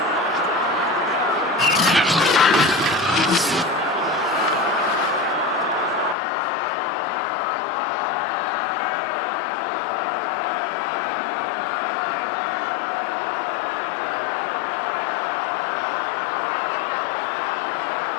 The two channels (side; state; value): right; drops out; at 6.2 s